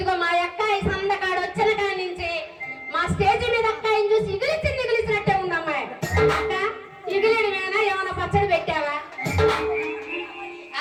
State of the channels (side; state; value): both; identical; correlation 1.00